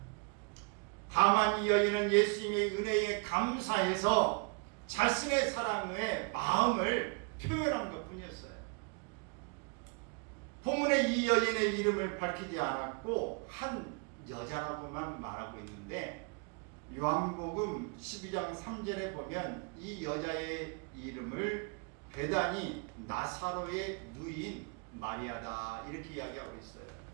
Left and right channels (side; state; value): left; quieter; 34.6 dB